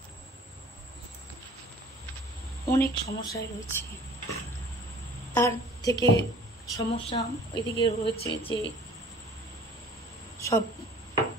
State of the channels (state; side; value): normal; both; correlation 0.48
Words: অনেক সমস্যায় রয়েছে। তার থেকে সমস্যা ওইদিকে রয়েছে যে সব